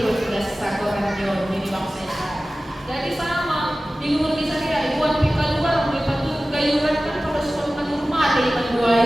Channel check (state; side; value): normal; both; correlation 0.96